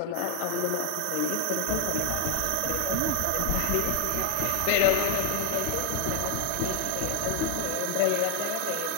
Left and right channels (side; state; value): both; different; correlation 0.00